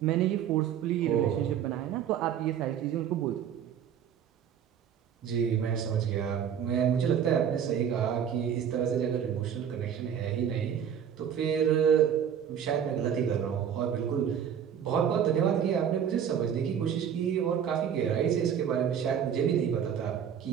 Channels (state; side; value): quieter; left; 8.6 dB